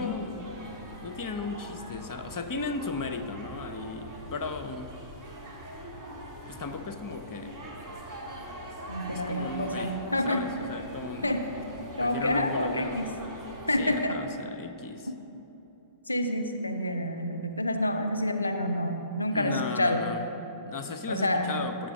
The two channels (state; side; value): inverted; both; correlation -0.60